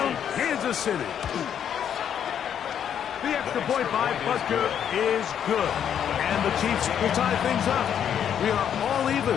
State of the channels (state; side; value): quieter; right; 8.9 dB